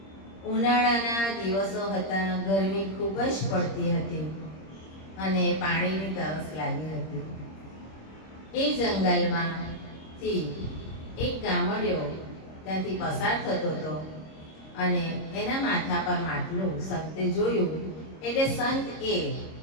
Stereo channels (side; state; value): right; late; 26 ms